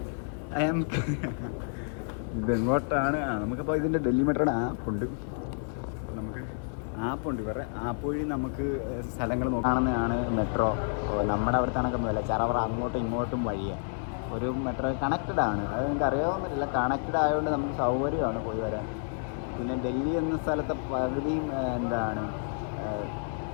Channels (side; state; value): right; silent; 58 dB below the other